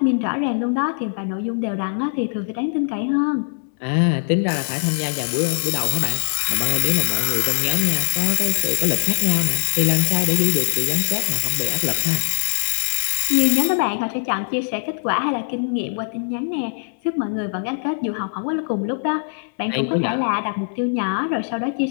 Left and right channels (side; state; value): right; silent; 62 dB below the other